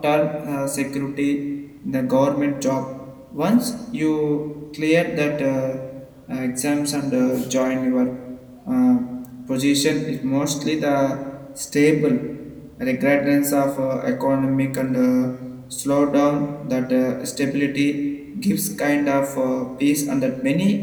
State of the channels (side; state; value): both; identical; correlation 1.00